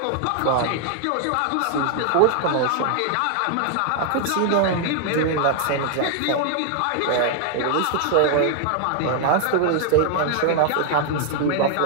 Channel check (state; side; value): different; both; correlation 0.00